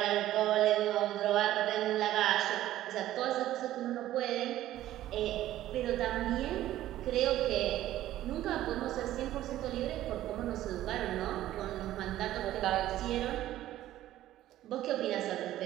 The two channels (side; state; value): left; quieter; 13.9 dB